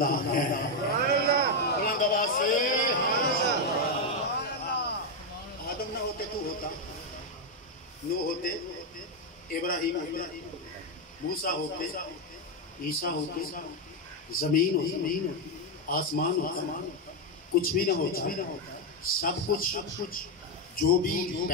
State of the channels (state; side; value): normal; both; correlation 0.04